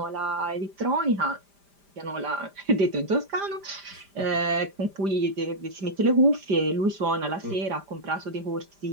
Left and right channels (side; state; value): left; late; 5.0 ms